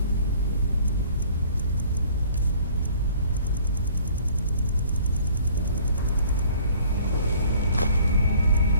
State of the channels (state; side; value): inverted; both; correlation -0.54